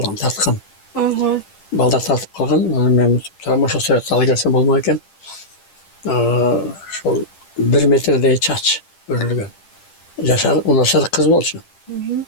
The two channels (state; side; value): late; right; 10 ms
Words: тарткан. Балдар тартып калган, анан мен турам ошо сүрөттү ала келсем болмок экен. Ошол 1 метрдей чач өрүлгөн. Жашар, унашар кыз болчу.